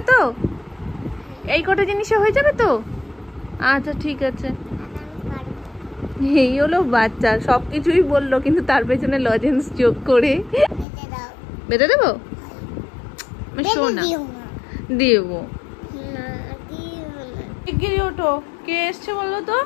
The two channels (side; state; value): right; drops out; at 10.9 s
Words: তো, এই কটা জিনিসে হয়ে যাবে তো। আচ্ছা ঠিক আছে। এই হলো বাচ্চা, সবকিছুই বললো কিন্তু তার পেছনে লজেন্স যোগ করে। বেটে দাও। বেটে দেবো? শোনা দিও না। দেবো। না, দিও না। শিগগিরই ওঠো, কে এসছে বলো তো,